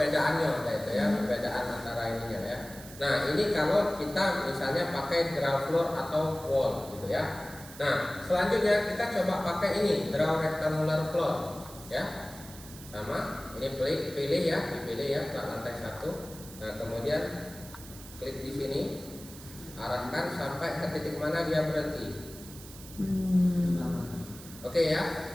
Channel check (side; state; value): right; noise; hiss, 16 dB below the sound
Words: kayak itu ya, perbedaan antara ininya ya. Nah, ini kalau kita misalnya pakai draw floor atau wall gitu ya. Nah, selanjutnya kita coba pakai ini draw rectangular floor ya. Sama, ini pilih ya, dipilih ya plat lantai 1. Nah, kemudian klik di sini, arahkan sampai ke titik mana dia berhenti. Oke ya,